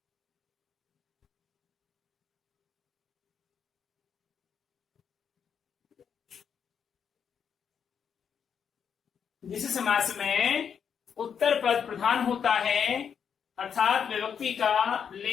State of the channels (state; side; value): quieter; right; 7.4 dB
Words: जिस समास में उत्तर पद प्रधान होता है अर्थात विभक्ति का